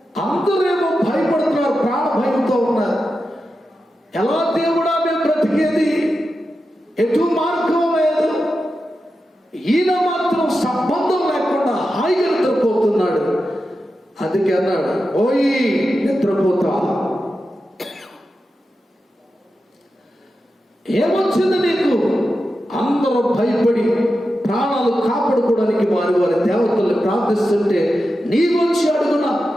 అందరేమో భయపడుతున్నారు, ప్రాణ భయంతో ఉన్నారు. ఎలా దేవుడా మేము బ్రతికేది, ఎటు మార్గం లేదు. ఈయన మాత్రం సంబంధం లేకుండా హాయిగా నిద్రపోతున్నాడు. అందుకే అన్నాడు, ఓయి నిద్రపోతా, ఏమొచ్చింది నీకు? అందరూ భయపడి ప్రాణాలు కాపాడుకోవడానికి వారి వారి దేవతల్ని ప్రార్థిస్తుంటే నీవొచ్చి అడుగున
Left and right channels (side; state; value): both; normal; correlation 0.90